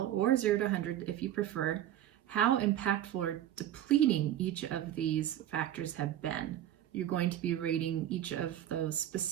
or 0 to 100 if you prefer, how impactful or depleting each of these factors have been. You're going to be rating each of those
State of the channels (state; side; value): quieter; left; 11.9 dB